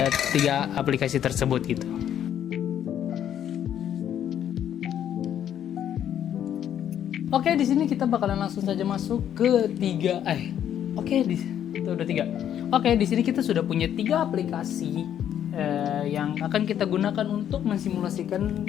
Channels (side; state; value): right; quieter; 10.1 dB